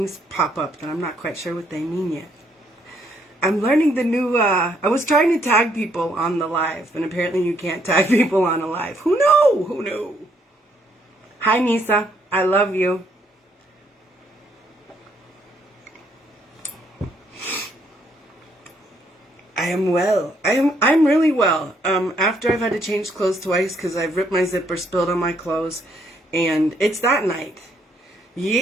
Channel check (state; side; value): normal; both; correlation 0.71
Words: pop up that I'm not quite sure what they mean yet. I'm learning the new, I was trying to tag people on the live, and apparently you can't tag people on a live. Who knew? Who knew? Hi, Nisa. I love you. I am well. I'm really well. After I've had to change clothes twice because I've ripped my zipper, spilled on my clothes, and it's that night.